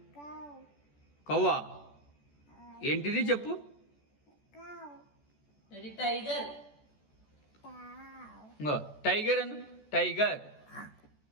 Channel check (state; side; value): late; right; 14 ms